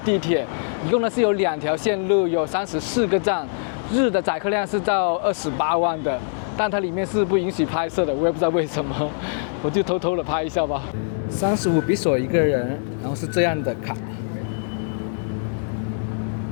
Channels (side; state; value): right; silent; digital silence